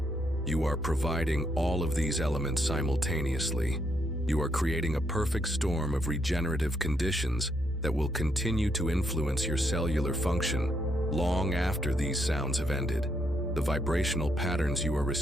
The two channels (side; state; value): both; normal; correlation 0.77